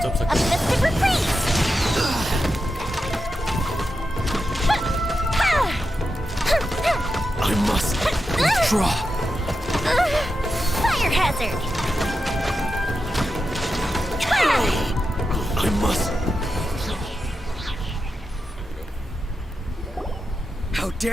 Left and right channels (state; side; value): normal; both; correlation 0.88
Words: A mystic reprise! I must withdraw. Fire hazard! I must. How